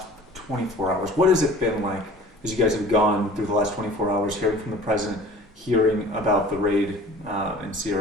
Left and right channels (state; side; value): normal; both; correlation 0.46